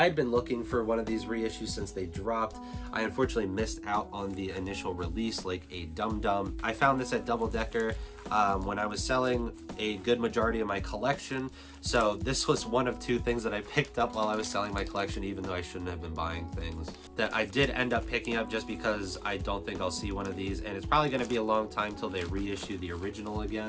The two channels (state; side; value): identical; both; correlation 1.00